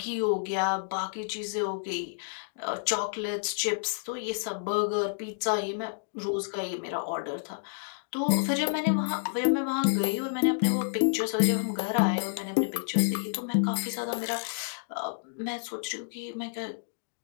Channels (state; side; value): silent; right; digital silence